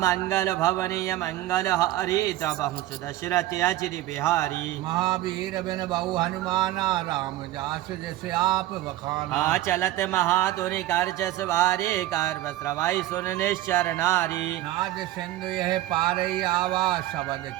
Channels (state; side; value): quieter; left; 15.3 dB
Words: मंगल भवनीय मंगल हरि दबहु सुदशरथ अजिर बिहारी महावीर बिन बहु हनुमाना राम जास जैसे आप बखाना चलत महाधुनि कर जस वारे गर्भ श्रवाई सुन निश्चर नारी नाद सिंधु यह पारई आवा शबद